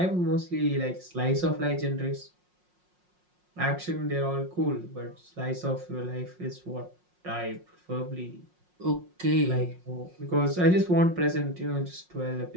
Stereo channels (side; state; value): left; late; 5.6 ms